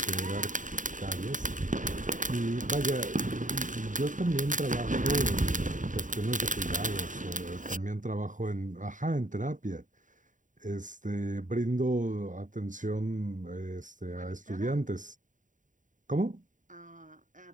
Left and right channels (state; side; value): late; left; 0.37 ms